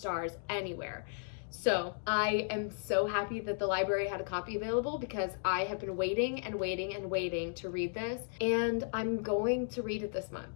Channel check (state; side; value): silent; right; digital silence